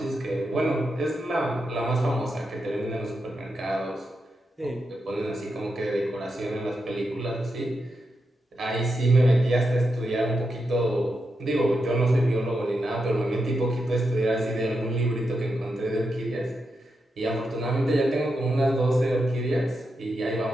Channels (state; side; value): normal; both; correlation 0.86